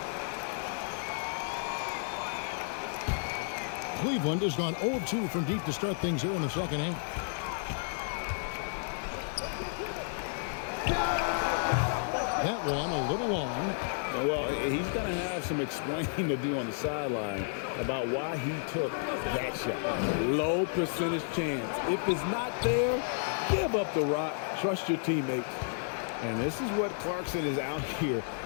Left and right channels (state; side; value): silent; right; digital silence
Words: Cleveland has gone 0-2 from deep to start things here in the second half. That one a little long. Well, he's going to have some explaining to do on the sideline about why he took that shot. Low percentage chance. If it's not there, give up the rock. Trust your teammates. And this is what Clarkson is out here